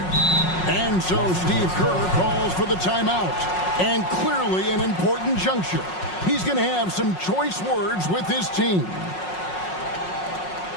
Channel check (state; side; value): late; right; 5.5 ms